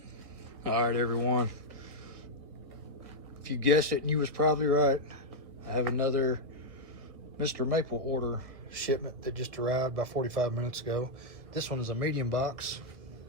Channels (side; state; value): left; late; 1.3 ms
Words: All right, everyone. If you guessed it, and you was probably right. I have another Mr. Maple order shipment that just arrived about 45 minutes ago. This one is a medium-sized